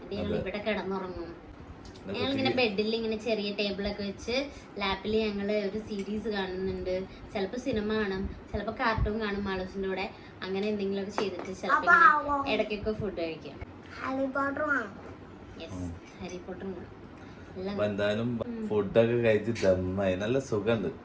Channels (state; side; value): identical; both; correlation 1.00